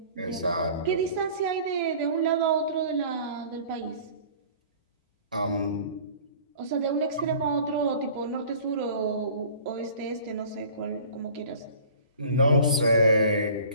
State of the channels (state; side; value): inverted; both; correlation -0.46